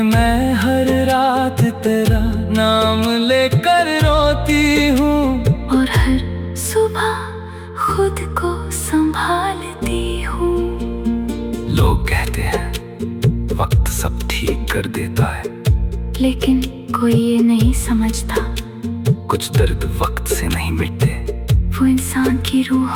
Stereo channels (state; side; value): identical; both; correlation 1.00